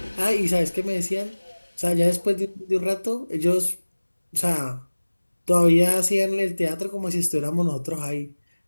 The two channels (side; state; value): both; inverted; correlation -1.00